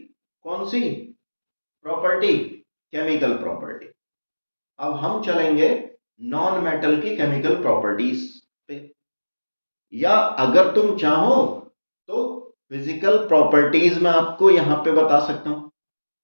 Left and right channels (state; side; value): inverted; both; correlation -1.00